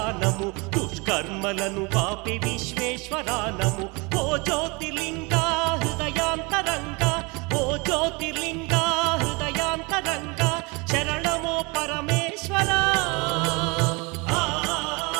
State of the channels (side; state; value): left; quieter; 27.9 dB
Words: నమో దుష్కర్మలను బాపే విశ్వేశ్వరా నమో ఓ జ్యోతిర్లింగా హృదయాంతరంగా ఓ జ్యోతిర్లింగా హృదయాంతరంగా శరణమో పరమేశ్వరా